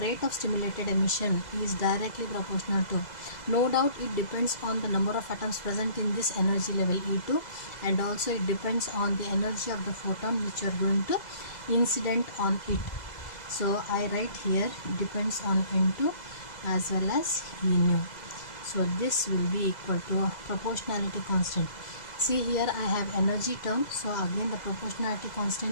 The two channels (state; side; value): late; right; 2.0 ms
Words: of stimulated emission is directly proportional to, no doubt it depends on the number of atoms present in this energy level E2, and also it depends on the energy of the photon which you are going to incident on it. So I write here depends on N2 as well as E nu. So this will be equal to a proportionality constant. See here I have energy term, so again the proportionality